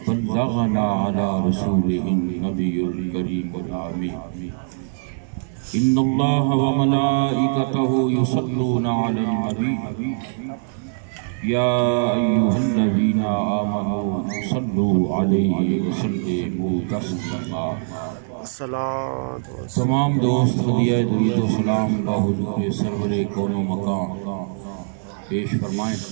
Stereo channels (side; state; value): left; silent; 57 dB below the other